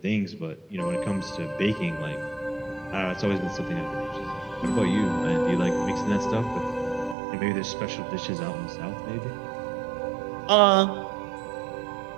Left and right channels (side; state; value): left; drops out; at 7.2 s